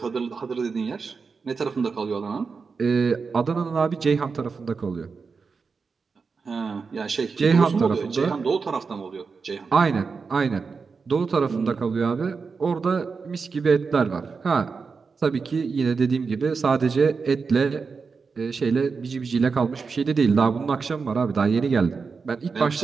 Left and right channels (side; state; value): left; quieter; 5.0 dB